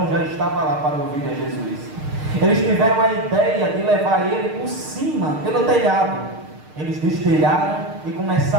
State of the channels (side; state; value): left; late; 6.5 ms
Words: já estava lá para ouvir a Jesus. Eles tiveram a ideia de levar ele por cima, pelo telhado. Eles destelharam e